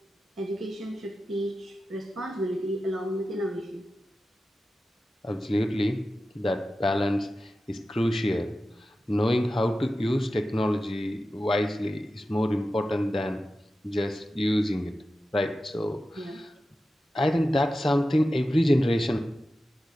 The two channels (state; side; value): normal; both; correlation 0.93